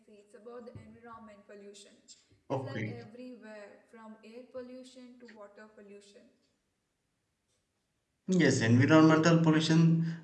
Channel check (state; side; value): identical; both; correlation 1.00